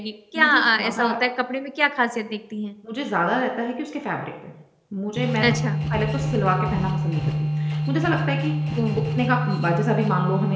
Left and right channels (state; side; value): identical; both; correlation 1.00